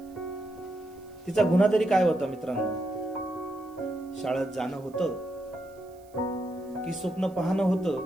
तिचा गुन्हा तरी काय होता मित्रांनो? शाळेत जाणं होतं की स्वप्न पाहणं होतं,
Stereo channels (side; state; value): right; noise; hiss, 29 dB below the sound